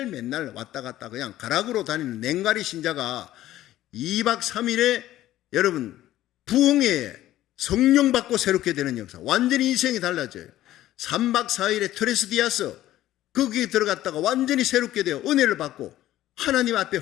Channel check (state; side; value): quieter; right; 14.1 dB